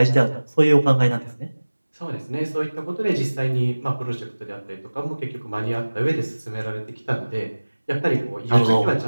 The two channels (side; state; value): both; inverted; correlation -1.00